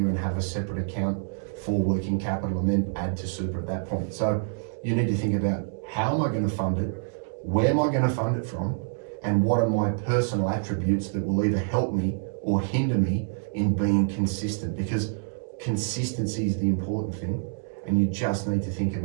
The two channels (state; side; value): silent; left; digital silence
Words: and have a separate account for working capital and then add to super at that point. So you need to think about, how am I going to fund it? Where am I going to fund it from? And what are my personal attributes that will either help me or hinder me in being consistent? Because consistency is the important thing. And you just need to think